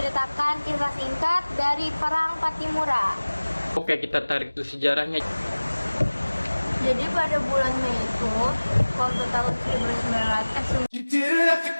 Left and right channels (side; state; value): both; inverted; correlation -1.00